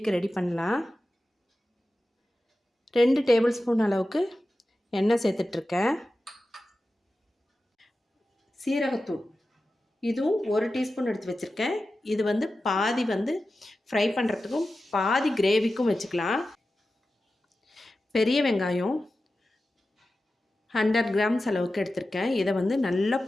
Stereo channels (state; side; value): normal; both; correlation 0.93